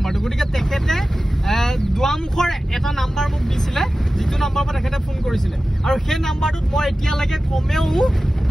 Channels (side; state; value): both; normal; correlation 0.95